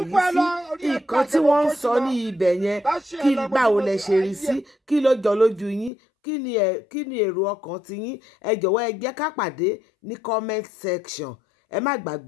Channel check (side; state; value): right; drops out; at 5.9 s